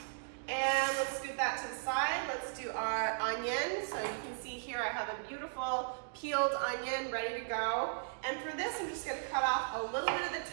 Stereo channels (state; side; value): silent; left; digital silence